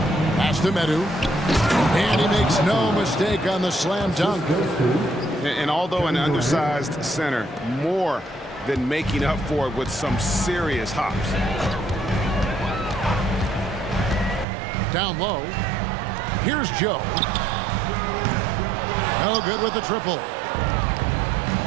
Pass to Medu. And he makes no mistake on the slam dunk. And although an undersized center, more than making up for it with some serious hops. Down low. Here's Joe. No good with the triple.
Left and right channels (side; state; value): left; drops out; at 14.5 s